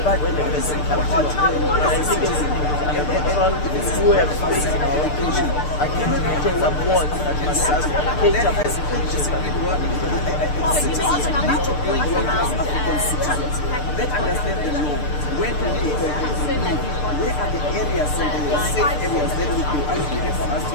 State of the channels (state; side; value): late; right; 6.7 ms